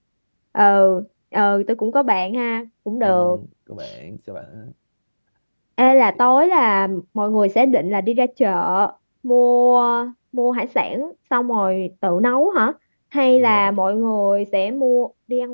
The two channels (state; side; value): inverted; both; correlation -1.00